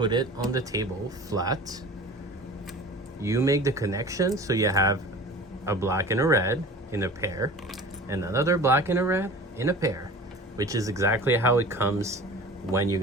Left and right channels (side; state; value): both; normal; correlation 0.40